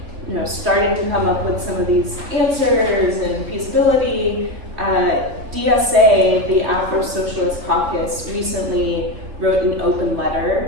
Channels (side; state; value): left; late; 3.6 ms